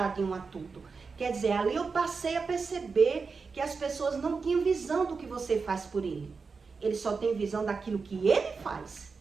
de um a tudo. Quer dizer, ali eu passei a perceber que as pessoas não tinham visão do que você faz por ele. Ele só tem visão daquilo que ele faz.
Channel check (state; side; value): quieter; left; 4.8 dB